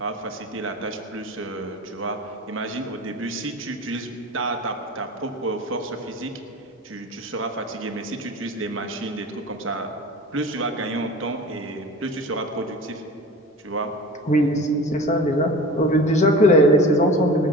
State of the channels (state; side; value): normal; both; correlation 0.36